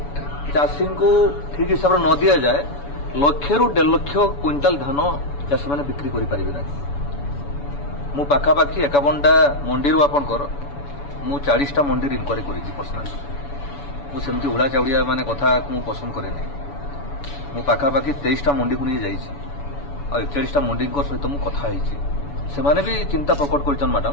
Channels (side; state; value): right; late; 7.0 ms